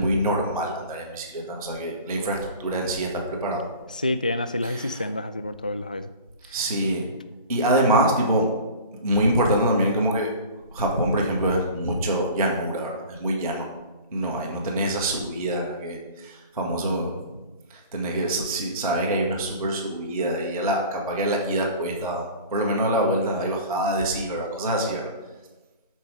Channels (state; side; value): inverted; both; correlation -0.40